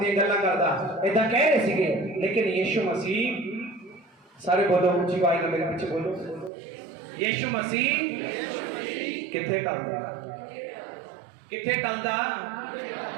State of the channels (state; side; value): drops out; left; at 6.5 s